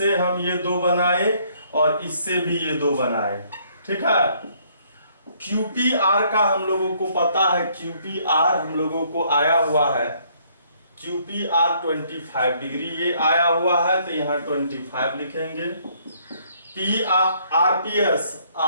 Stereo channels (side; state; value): both; inverted; correlation -0.66